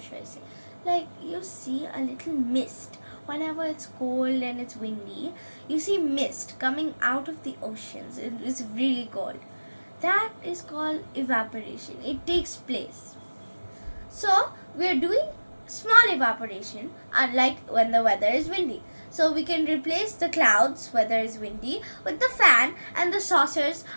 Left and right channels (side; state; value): both; inverted; correlation -1.00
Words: should I say? Like you see a little mist. Whenever it's cold and it's windy, you see mist coming out of the oceans. It's really cold. That is called evaporation. It takes place. So we are doing small evaporation, unlike when the weather is windy. So we can replace the clouds, weather is windy, with the fan, and the saucers